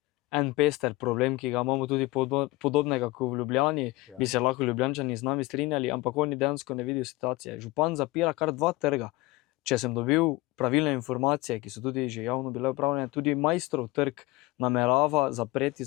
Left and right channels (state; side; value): quieter; right; 20.4 dB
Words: en pester problem, ki ga imamo tudi podobnega kot v Ljubljani, bi se lahko Ljubljančani z nami strinjali, ampak oni dejansko ne vidijo situacije. Župan zapira kar 2 trga. Če sem dobil pravilne informacije, ki so tudi že javno bile upravljene, tudi Maistrov trg namerava zapreti